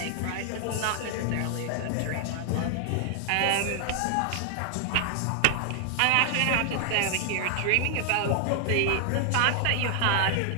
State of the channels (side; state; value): both; different; correlation 0.00